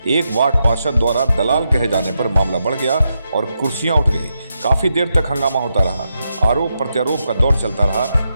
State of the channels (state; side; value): inverted; both; correlation -0.84